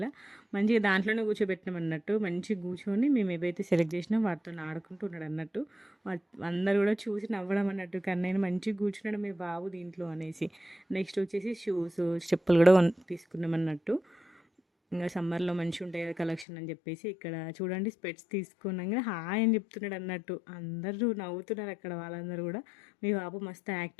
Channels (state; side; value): drops out; right; at 16.4 s